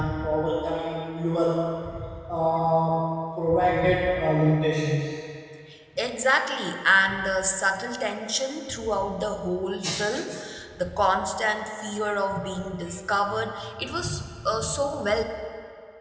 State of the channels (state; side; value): identical; both; correlation 1.00